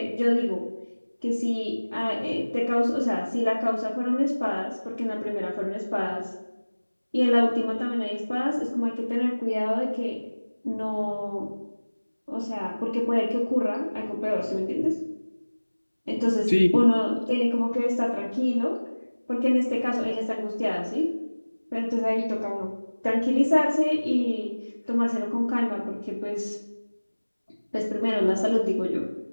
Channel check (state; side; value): inverted; both; correlation -1.00